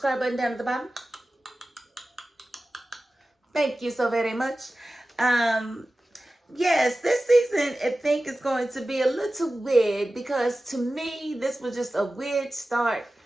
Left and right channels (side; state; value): both; normal; correlation 0.95